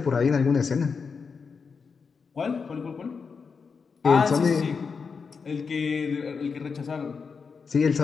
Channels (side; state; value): right; quieter; 5.4 dB